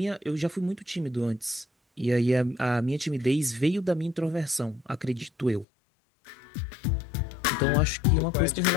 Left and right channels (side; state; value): right; drops out; at 5.7 s